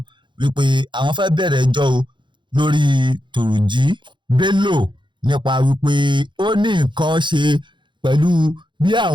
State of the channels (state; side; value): late; left; 0.23 ms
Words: wípé àwọn fẹ́ bẹ̀rẹ̀ ẹjọ́ o lórí Turji Bello nípa wípé ó ní nǹkan ṣe pẹ̀lú bí